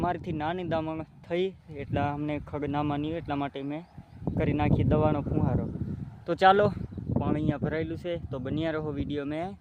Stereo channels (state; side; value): identical; both; correlation 1.00